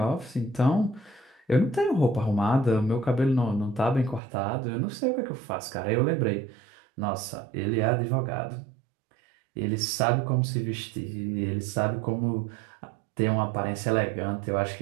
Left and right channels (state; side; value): drops out; left; at 4.2 s